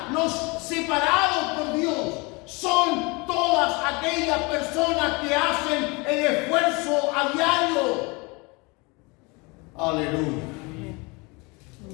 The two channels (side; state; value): right; quieter; 27.6 dB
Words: los separados por Dios, son todas aquellas personas que hacen el esfuerzo a diario. Aleluya.